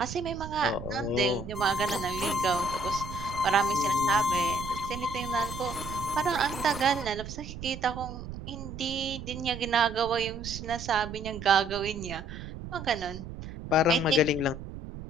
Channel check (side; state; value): right; noise; rumble, 10 dB below the sound